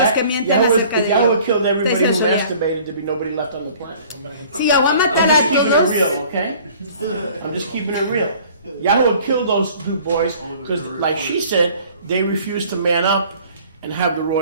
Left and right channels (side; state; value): both; inverted; correlation -0.51